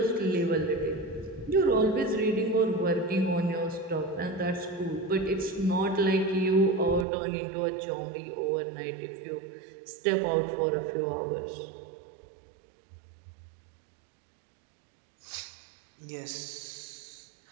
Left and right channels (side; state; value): left; drops out; at 7.1 s